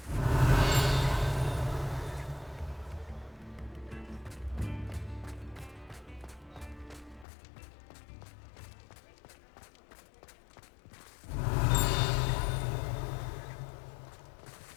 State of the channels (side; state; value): right; drops out; at 7.2 s